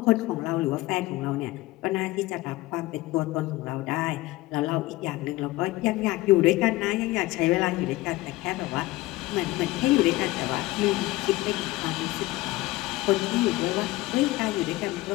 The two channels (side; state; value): right; quieter; 19.0 dB